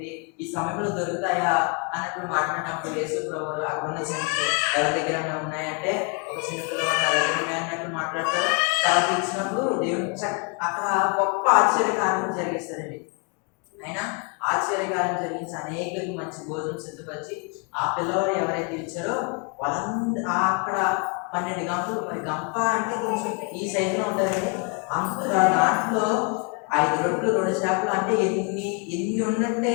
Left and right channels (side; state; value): right; quieter; 36.2 dB